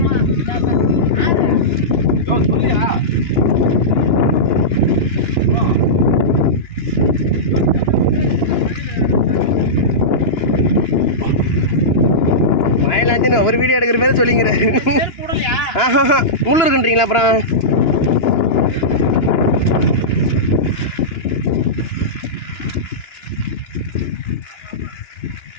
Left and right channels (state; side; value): late; right; 2.9 ms